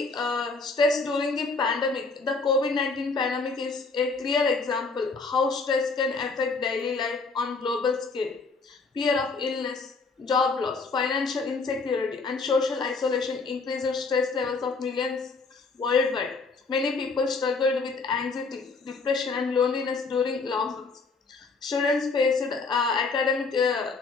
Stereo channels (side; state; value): right; quieter; 4.2 dB